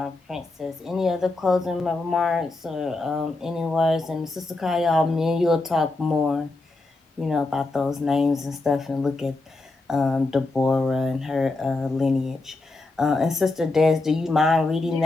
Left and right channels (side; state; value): right; quieter; 3.1 dB